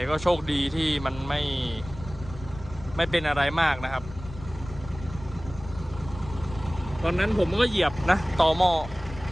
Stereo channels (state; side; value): noise; left; rumble, 14 dB below the sound